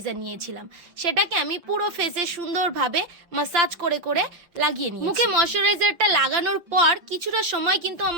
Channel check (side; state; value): left; late; 5.9 ms